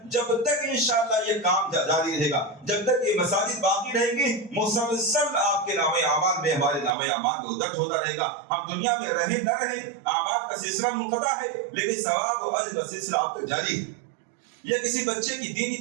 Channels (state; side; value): drops out; left; at 6.9 s